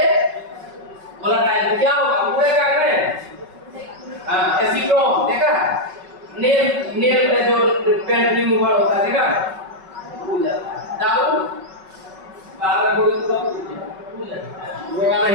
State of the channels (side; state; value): left; late; 5.4 ms